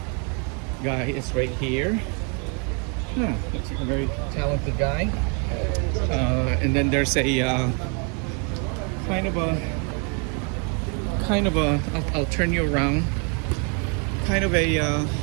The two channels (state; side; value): quieter; left; 36.9 dB